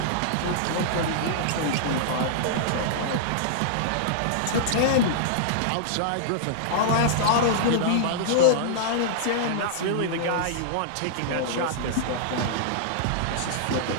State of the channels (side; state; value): both; different; correlation -0.01